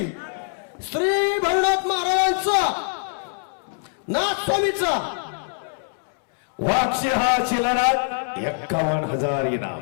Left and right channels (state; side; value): silent; right; digital silence